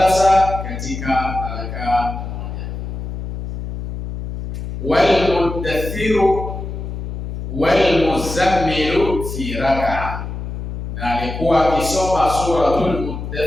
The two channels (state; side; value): noise; left; hum, 7 dB below the sound